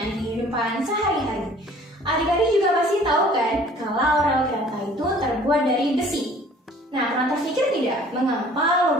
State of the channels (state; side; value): normal; both; correlation 0.52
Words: kehidupan sehari-hari. Adik-adik juga pasti tahu kan kalau rel kereta itu terbuat dari besi. Nah, pernah terpikir tidak mengapa